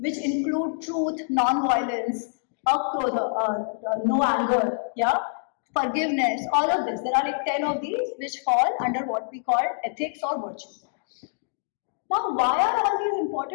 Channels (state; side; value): silent; right; digital silence